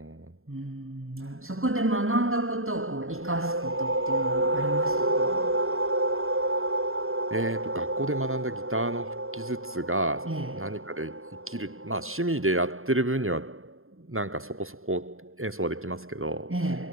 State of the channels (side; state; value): left; late; 0.61 ms